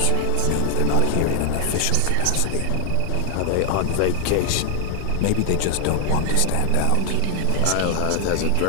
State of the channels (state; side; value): different; both; correlation 0.00